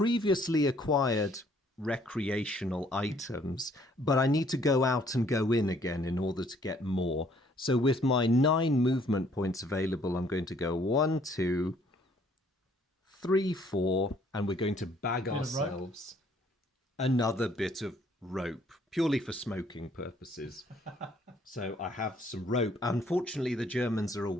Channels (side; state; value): both; normal; correlation 0.62